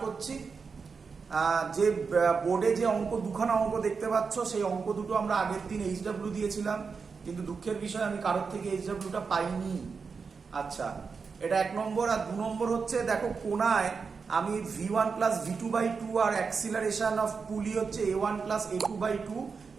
করছি। যে বোর্ডে যে দুখানা অঙ্ক দেখতে পাচ্ছ সেই অঙ্ক দুটো আমরা আগের দিন এইচডব্লিউ দিয়েছিলাম, কিন্তু দুঃখের বিষয় আমি কারোর থেকে এইচডব্লিউটা পাইনি। আচ্ছা, এটা 1 নম্বর। আর 2 নম্বর হচ্ছে, দেখো কোণায় আমি v1 plus v2/2 R acceleration of পুলি হচ্ছে a1 প্লাস a2/2,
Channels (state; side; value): quieter; left; 5.2 dB